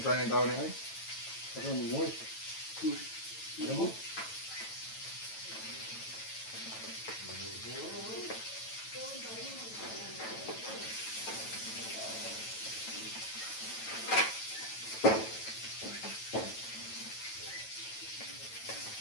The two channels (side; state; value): right; late; 9.1 ms